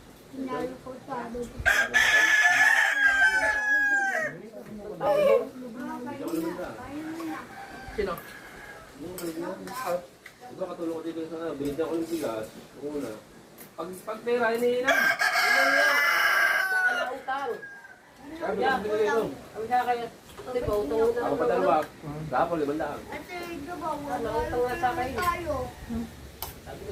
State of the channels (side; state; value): both; identical; correlation 1.00